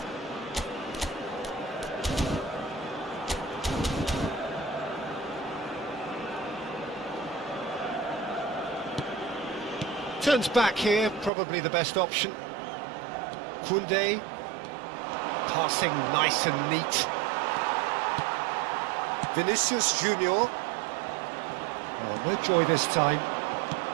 Turns back here, probably the best option. Koundé, passing nice and neat. Vinicius Junior. Oh, no joy this time.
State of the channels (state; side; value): drops out; left; at 11.3 s